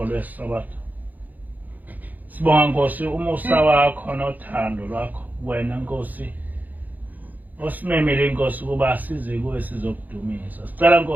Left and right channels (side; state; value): left; late; 0.082 ms